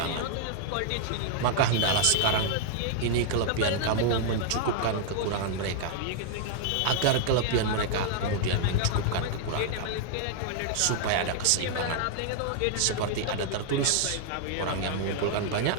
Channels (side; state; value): both; different; correlation -0.01